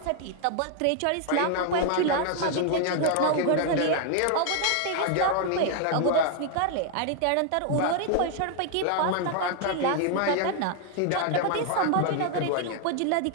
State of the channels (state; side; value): different; both; correlation 0.00